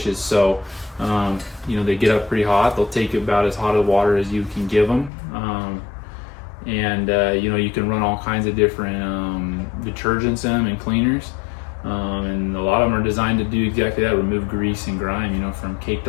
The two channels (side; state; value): right; drops out; at 5.1 s